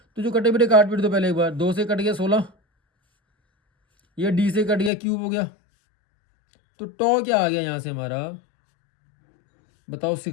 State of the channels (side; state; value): right; drops out; at 4.9 s